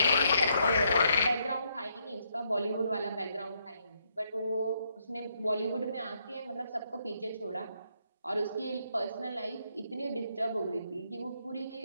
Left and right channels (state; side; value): inverted; both; correlation -0.75